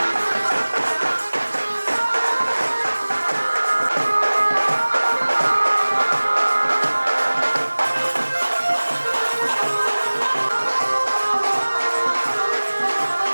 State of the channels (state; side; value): inverted; both; correlation -1.00